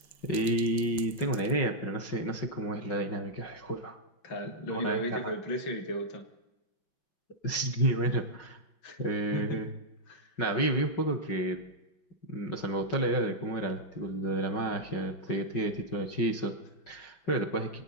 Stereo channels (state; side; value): late; right; 5.5 ms